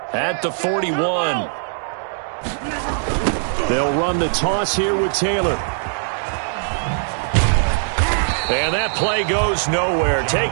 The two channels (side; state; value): left; silent; digital silence